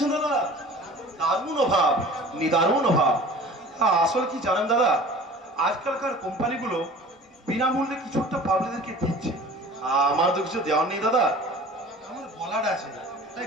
দাদা? দারুণ অভাব, নিদারুণ অভাব। আসলে কি জানেন দাদা, আজকালকার কোম্পানিগুলো বিনামূল্যে কিছু একটা পাবলিকদেরকে দিচ্ছে। আমার তো কিছু দেওয়ার নেই দাদা, আমার গলাটা আছে, তাই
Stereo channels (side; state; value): both; normal; correlation 0.44